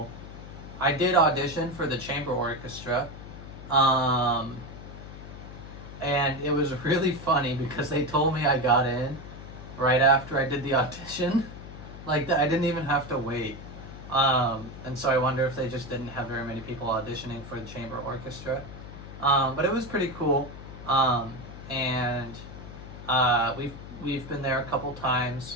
I did audition for the chamber orchestra, um, and it was really funny because they told me I got in right after I did the audition. Like I didn't even have to wait. And so I wonder if they just didn't have very many people auditioning for the chamber orchestra. But it was pretty cool. And we've been there a couple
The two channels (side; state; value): left; noise; hum, 13 dB below the sound